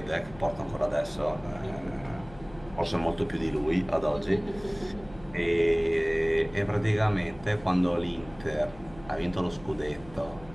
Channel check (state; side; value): noise; left; hum, 20 dB below the sound